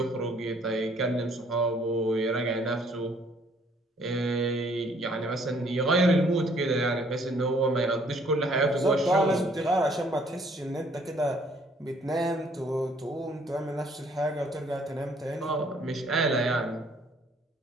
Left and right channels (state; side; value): normal; both; correlation 0.62